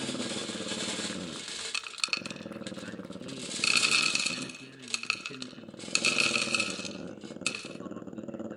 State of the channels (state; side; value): identical; both; correlation 1.00